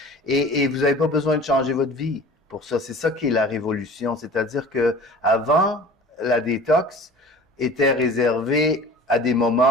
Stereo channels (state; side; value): normal; both; correlation 0.42